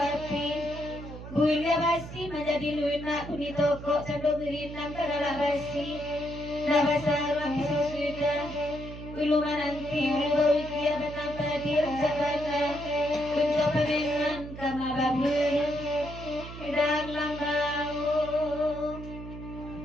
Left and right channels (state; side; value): noise; right; hum, 12 dB below the sound